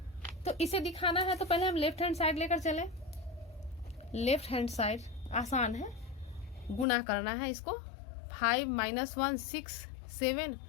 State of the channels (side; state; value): right; drops out; at 6.9 s